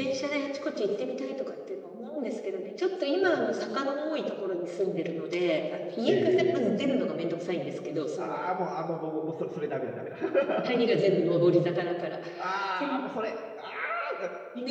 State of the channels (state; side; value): identical; both; correlation 1.00